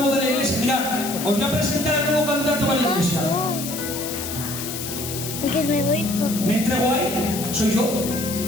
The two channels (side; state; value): left; noise; hiss, 7 dB below the sound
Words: de la iglesia. Mirad, os voy a presentar al nuevo candidato a la iglesia. Me entrego ahí, soy yo.